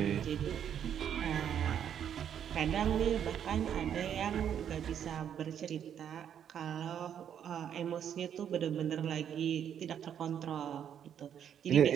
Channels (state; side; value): quieter; left; 9.0 dB